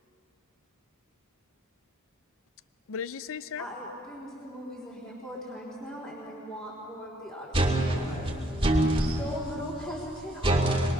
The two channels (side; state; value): both; normal; correlation 0.67